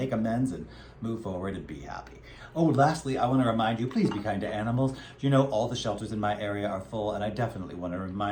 amends and move forward and be happy. Oh, lastly, I want to remind you, please be kind to animals. You know, all the shelters in my area are full, and I definitely want to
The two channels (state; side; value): identical; both; correlation 1.00